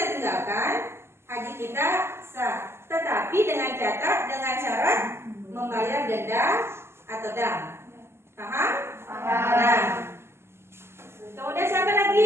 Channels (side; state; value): left; late; 0.12 ms